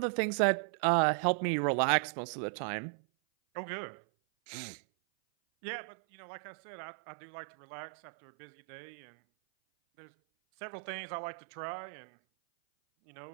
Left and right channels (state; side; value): silent; left; 54 dB below the other